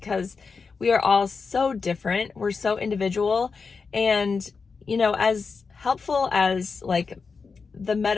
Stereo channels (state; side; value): quieter; right; 5.0 dB